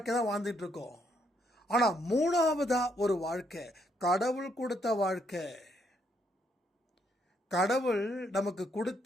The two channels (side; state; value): both; normal; correlation 0.73